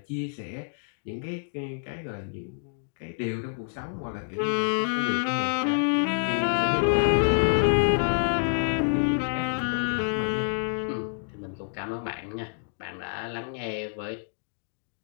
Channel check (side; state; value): right; silent; digital silence